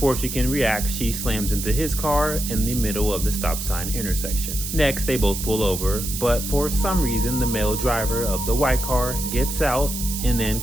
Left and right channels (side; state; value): right; noise; hiss, 6 dB below the sound